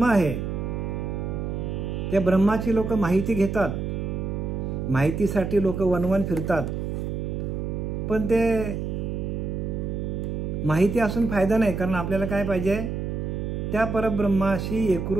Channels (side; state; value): right; noise; hum, 3 dB below the sound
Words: आहे त्या ब्रह्माची लोक माहिती घेतात, माहितीसाठी लोक वनवन फिरतात, पण ते माहिती असून फायदा नाही. कारण आपल्याला काय पाहिजे, त्या परब्रह्माशी